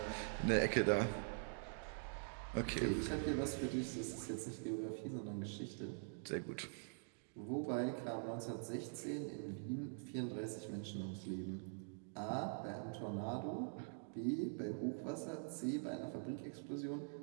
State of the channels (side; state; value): left; silent; digital silence